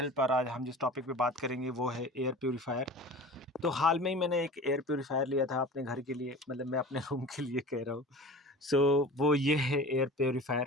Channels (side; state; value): both; normal; correlation 0.37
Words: और आज हम जिस टॉपिक पे बात करेंगे वो है एयर प्योरीफायर। तो हाल में ही मैंने एक एयर प्योरीफायर लिया था अपने घर के लिए, मतलब मैं अपने रूम के लिए कह रहा हूँ। सो वो ये है एयर प्योरीफायर।